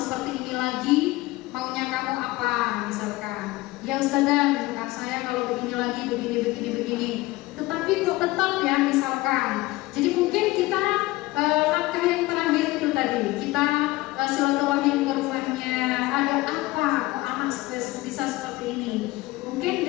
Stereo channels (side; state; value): right; quieter; 19.5 dB